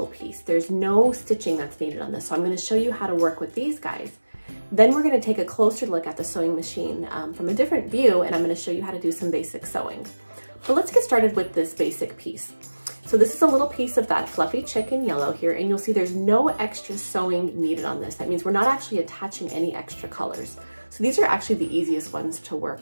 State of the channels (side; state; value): both; inverted; correlation -1.00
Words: piece. There's no stitching that's needed on this, so I'm going to show you how to work with these guys. Then we're going to take a closer look at the sewing machine from a different view, and I'm going to show you how to do some basic sewing. But let's get started with this basic piece. So this is a little piece of that fluffy chick in yellow here, and you'll see there's no extra sewing needed on this. That means we're not actually attaching any extra colors. So these are actually the easiest ones to